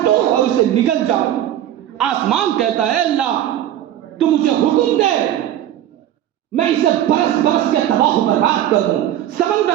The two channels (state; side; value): quieter; left; 11.9 dB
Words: اور اسے نگل جاؤں۔ آسمان کہتا ہے اللہ تو مجھے حکم دے میں اسے برس برس کے تباہ و برباد کر دوں۔